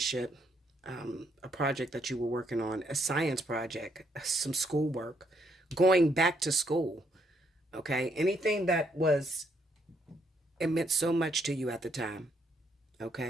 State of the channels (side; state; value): both; normal; correlation 0.72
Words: a project that you were working on, a science project, some schoolwork, going back to school, okay? Anything that was, it meant so much to you at the time,